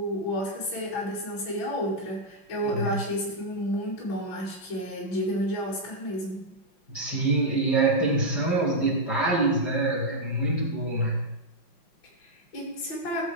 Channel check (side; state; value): right; late; 5.6 ms